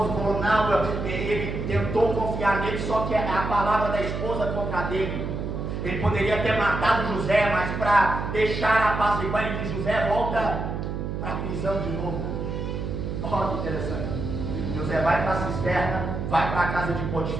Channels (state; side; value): noise; right; hum, 4 dB below the sound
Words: falou: não, ele tentou confiar nele, só que é a palavra da esposa contra dele. Ele poderia ter matado José, mas para deixar apaziguar, ele diz: José, volta para a prisão de novo. Olha que interessante. José vai para a cisterna, vai para a casa de